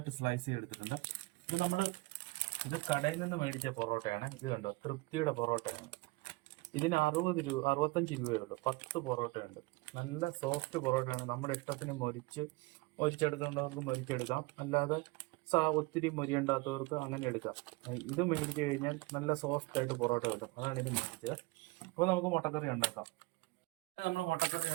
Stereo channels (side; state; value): left; quieter; 23.7 dB